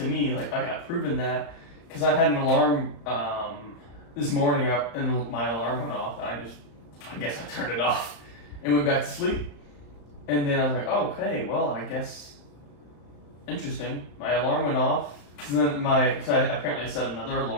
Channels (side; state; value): right; late; 35 ms